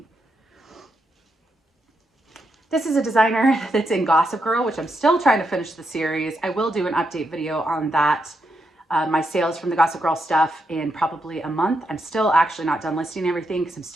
This is a designer that's in Gossip Girl, which I'm still trying to finish the series. I will do an update video on that, my sales from the Gossip Girl stuff in probably a month. I'm still actually not done listing everything because I'm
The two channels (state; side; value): normal; both; correlation 0.82